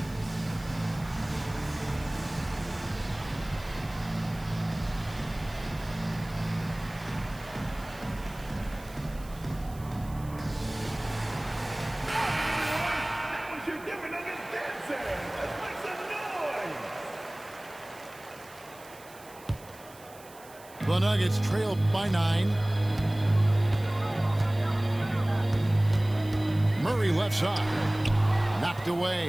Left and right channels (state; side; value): noise; right; hiss, 22 dB below the sound